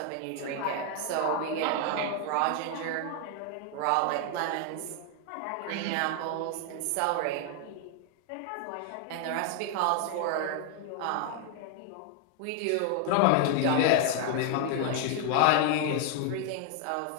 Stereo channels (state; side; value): different; both; correlation 0.00